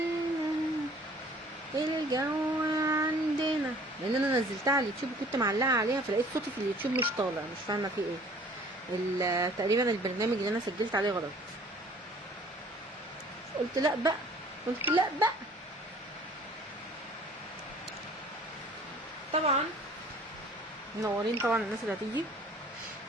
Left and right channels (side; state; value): both; normal; correlation 0.52